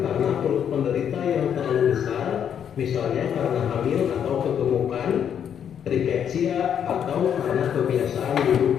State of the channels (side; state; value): right; quieter; 8.6 dB